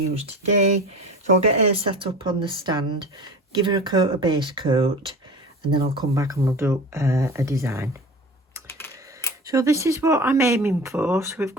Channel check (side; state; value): both; normal; correlation 0.35